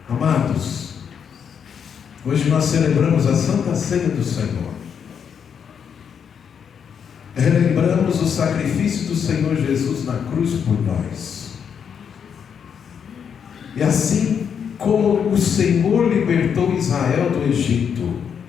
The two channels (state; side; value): quieter; right; 7.4 dB